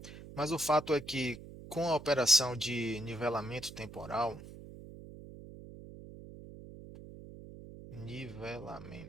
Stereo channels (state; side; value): noise; right; hum, 15 dB below the sound